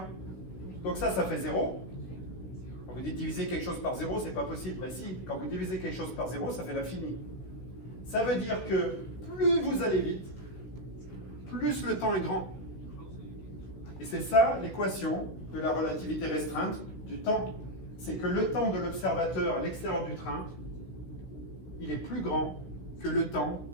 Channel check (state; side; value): late; right; 16 ms